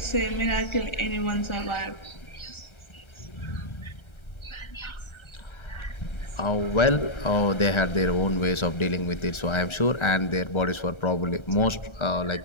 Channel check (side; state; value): right; late; 1.3 ms